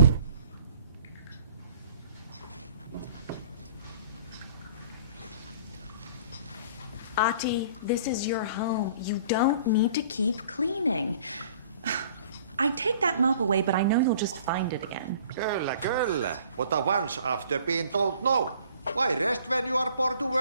Ati, this is your home. You don't need to keep cleaning. I take that mop away, but I know you'll just find it again. Kyllä. But once after being told no. Why rest when you are born to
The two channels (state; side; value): inverted; both; correlation -0.52